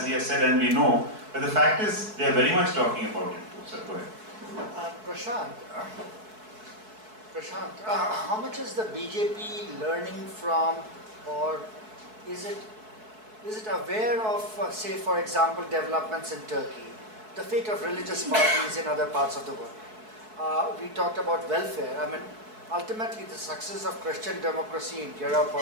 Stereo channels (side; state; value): left; late; 4.6 ms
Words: he has said, and we know, but the fact is they are very much talking about it too. Sir, go ahead. Prashant, how much is the BJP learning from, or is it aware of, say for example, developments in Turkey, the fate of religious parties in other parts of the world? We talked about welfare. I mean, ultimately the success of Christian democracy in Europe